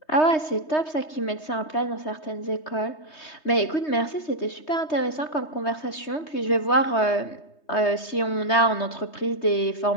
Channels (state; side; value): late; right; 3.2 ms